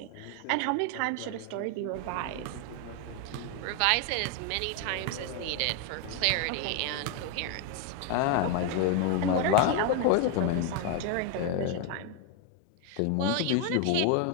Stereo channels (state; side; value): different; both; correlation 0.01